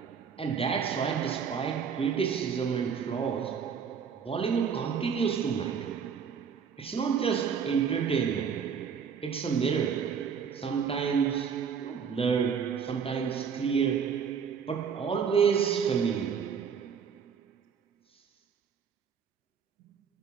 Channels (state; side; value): quieter; left; 6.7 dB